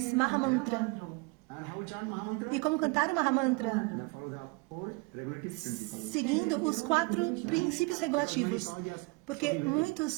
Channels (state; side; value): quieter; left; 27.5 dB